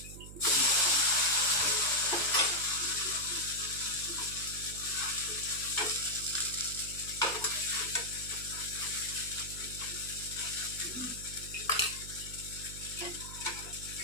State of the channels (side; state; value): right; noise; hum, 13 dB below the sound